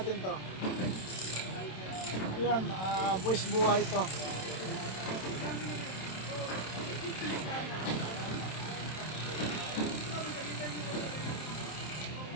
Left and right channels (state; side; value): late; right; 27 ms